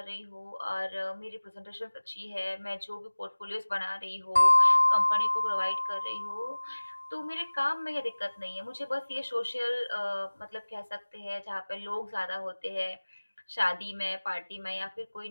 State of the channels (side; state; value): both; inverted; correlation -1.00